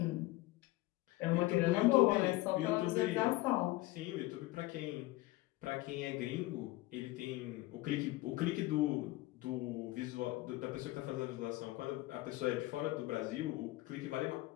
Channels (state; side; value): quieter; right; 18.9 dB